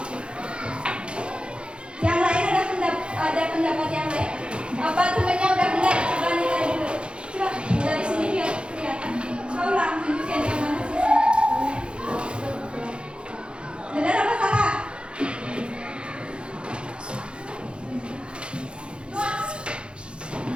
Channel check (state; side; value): late; left; 0.055 ms